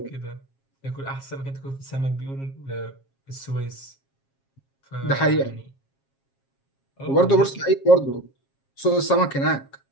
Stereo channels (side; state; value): right; late; 7.4 ms